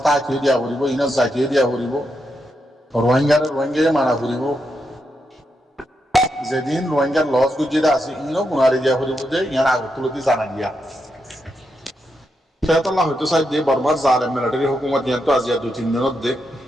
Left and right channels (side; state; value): both; normal; correlation 0.84